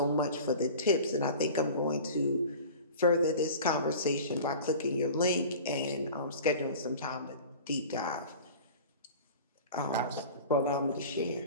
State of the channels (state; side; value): inverted; both; correlation -0.39